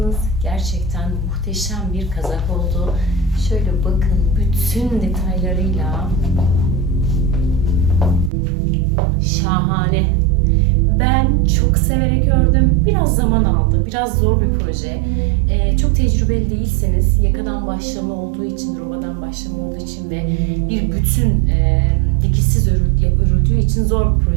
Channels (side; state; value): left; drops out; at 8.3 s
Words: Gerçekten muhteşem bir kazak oldu. Şöyle bakın, bütün detaylarıyla şahane. Ben çok severek ördüm. Biraz zaman aldı. Biraz zor bir proje. Çok tecrübeli değilseniz, yakadan başlama olduğu için, robadan başlama olduğu için ve bir bütün dikişsiz örüldüğü için zor bir